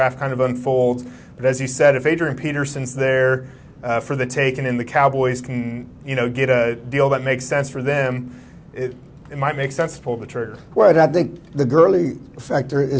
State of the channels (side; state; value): both; identical; correlation 1.00